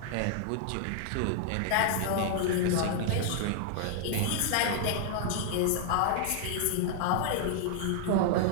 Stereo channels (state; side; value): different; both; correlation 0.00